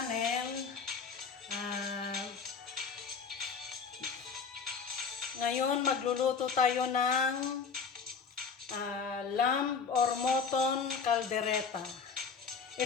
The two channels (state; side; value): quieter; right; 5.7 dB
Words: Ah, Ngayon magluluto tayo ng lamb or mutton caldereta.